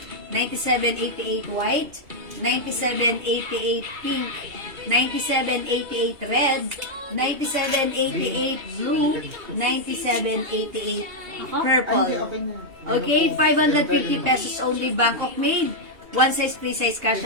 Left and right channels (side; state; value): left; late; 2.8 ms